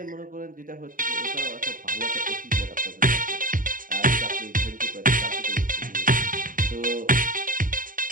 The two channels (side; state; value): left; late; 0.40 ms